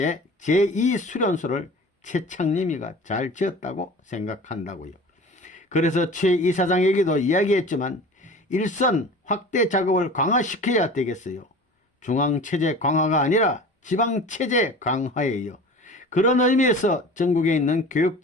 제2수련소를 최창림이가 잘 지었다고 생각한다고요. 그래서 최 이사장에게도 이야기했지만 일선 확대 작업을 강화시켜야 되겠어요. 중앙체제 강화가 아니라 지방체제 강화예요. 그런 의미에서 전국에 있는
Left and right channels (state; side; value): normal; both; correlation 0.39